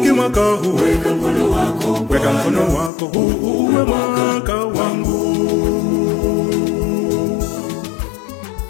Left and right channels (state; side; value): drops out; right; at 2.9 s